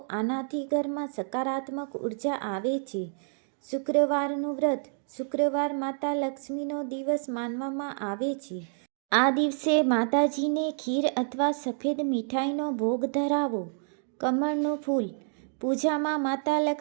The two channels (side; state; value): left; silent; digital silence